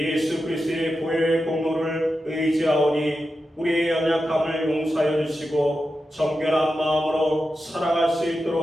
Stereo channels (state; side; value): normal; both; correlation 0.90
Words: 그리스도의 보혈의 공로를 의지하오니 우리의 연약함을 용서하여 주시고 정결한 마음으로 살아갈 수